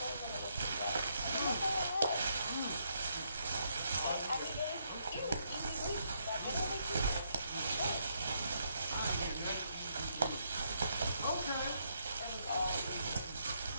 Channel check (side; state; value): both; inverted; correlation -0.75